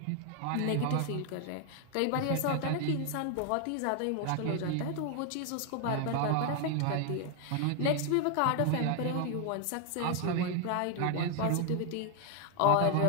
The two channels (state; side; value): different; both; correlation 0.00